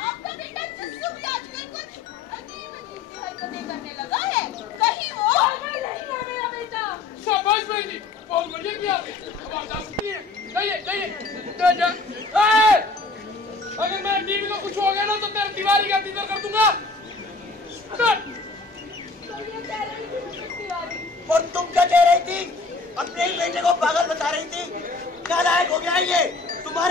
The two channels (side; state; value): right; quieter; 3.8 dB